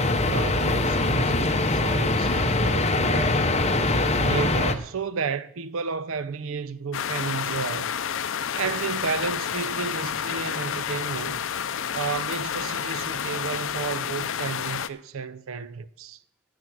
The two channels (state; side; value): normal; both; correlation 0.22